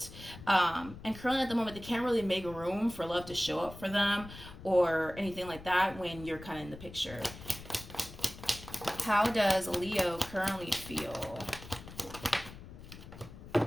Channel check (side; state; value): left; noise; rumble, 15 dB below the sound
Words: And currently at the moment, they can't really make room for love to show up for them or anything like that when you're kind of in the picture. How does Leo currently feel?